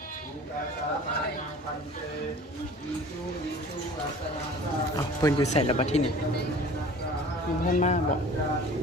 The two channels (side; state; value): both; normal; correlation 0.44